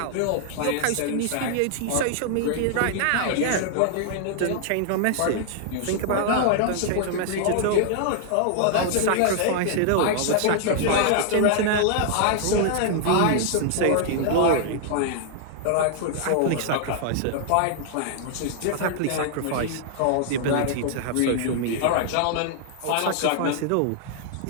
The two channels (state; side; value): different; both; correlation -0.01